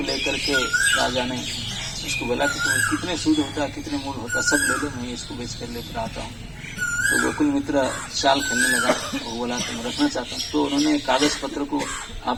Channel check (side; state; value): both; identical; correlation 1.00